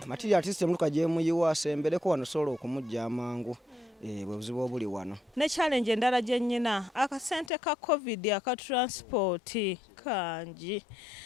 Material artist muluka gye muyiwa asembereko wano sobola okumujja amangu. Bwe buzibu obuli wano. Ne challenge endala gye nnyina akasente ka COVID aka transport kangi.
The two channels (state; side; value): drops out; right; at 7.5 s